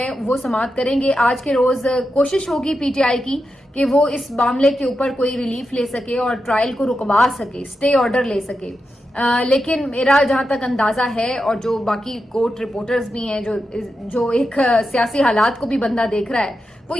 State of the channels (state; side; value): normal; both; correlation 0.88